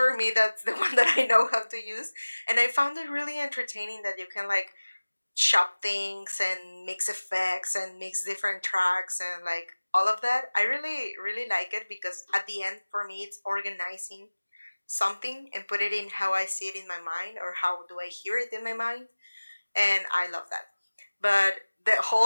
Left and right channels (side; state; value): both; inverted; correlation -1.00